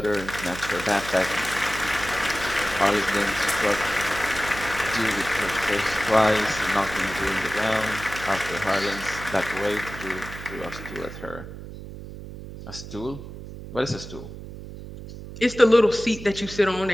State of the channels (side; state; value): right; noise; hum, 12 dB below the sound